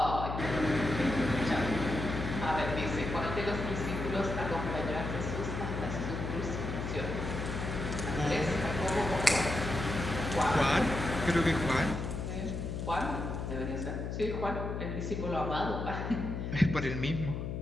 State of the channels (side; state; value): left; noise; hum, 4 dB below the sound